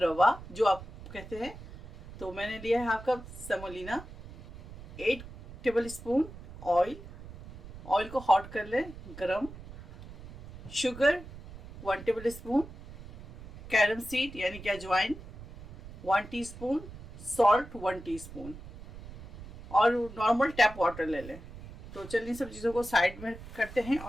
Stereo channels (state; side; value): noise; right; rumble, 15 dB below the sound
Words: रवा जो आप कहते हैं, तो मैंने लिया है half cup semolina. 8 tablespoon oil को हॉट कर लें, गरम। Sugar 1 table spoon, carom seed यानी कि अजवाइन 1 टीस्पून, सॉल्ट 1 टीस्पून और नॉर्मल टैप वाटर ले लें। तो चलिए सब चीज़ों को साइड में करते हैं